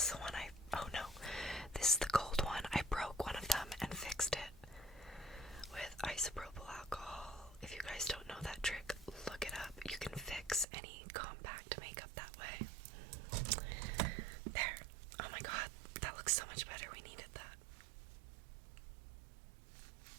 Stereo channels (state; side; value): drops out; left; at 10.7 s